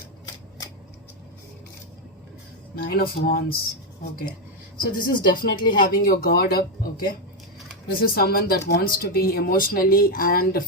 Nine of Wands, okay? So this is definitely having your guard up, okay? This is someone that wants to be emotionally and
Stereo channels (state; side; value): normal; both; correlation 0.04